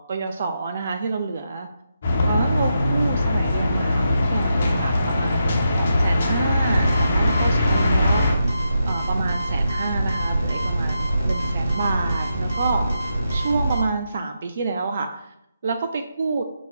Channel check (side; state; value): both; inverted; correlation -0.84